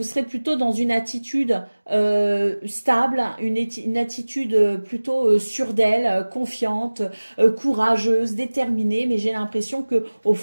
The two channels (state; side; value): inverted; both; correlation -1.00